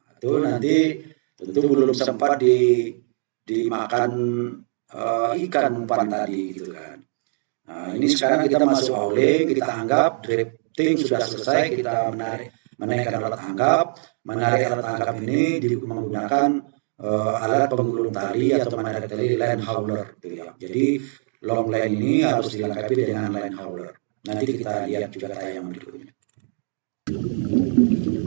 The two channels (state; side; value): silent; left; digital silence